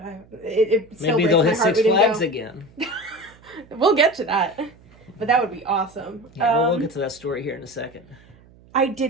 It still Maybe they'll hit breaks my heart Six we didn't Flags go. again. We'll get to that, but that would be awesome. Yeah, we'll get to that story here in a second. I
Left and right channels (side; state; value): right; noise; hum, 26 dB below the sound